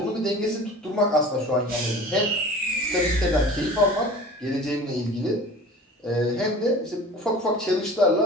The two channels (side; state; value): both; normal; correlation 0.41